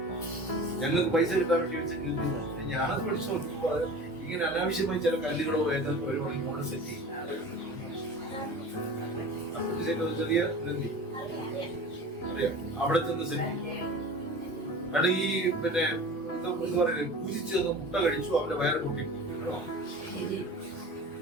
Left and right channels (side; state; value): both; normal; correlation 0.37